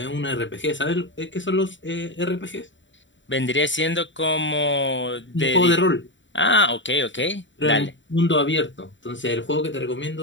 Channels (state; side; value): late; right; 0.54 ms